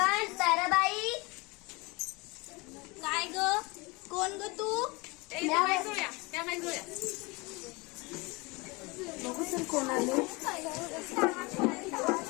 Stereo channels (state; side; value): quieter; right; 26.0 dB